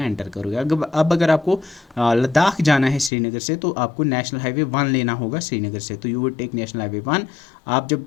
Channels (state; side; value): drops out; right; at 3.1 s